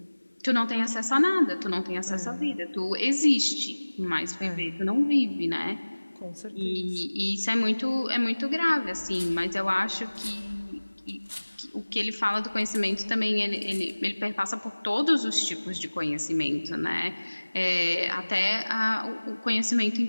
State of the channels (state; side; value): inverted; both; correlation -1.00